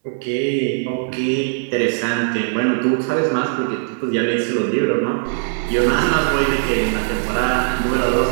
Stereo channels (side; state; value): left; silent; digital silence